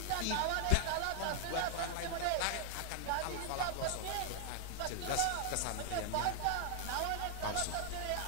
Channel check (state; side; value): different; both; correlation 0.00